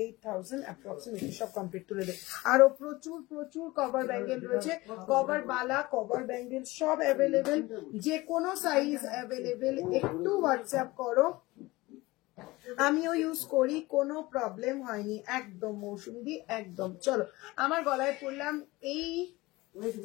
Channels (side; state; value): right; quieter; 20.7 dB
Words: approximately. সব কমপ্লিট তুলে দেয়। আরো প্রচুর প্রচুর কভার ব্যাঙ্গেল রয়েছে, কভার বালা কভার ব্যাঙ্গেল সব অ্যাভেলেবেল, যে কোনো সাইজ অ্যাভেলেবেল। একটু হোয়াটসঅ্যাপ করো, আমিও ইউজ করি, কোনো প্রবলেম হয়নি, একদম মৌসুমি একদম। চলো আমার গলায় পড়লাম এই